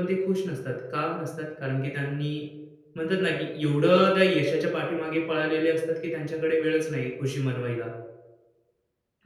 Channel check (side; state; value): both; identical; correlation 1.00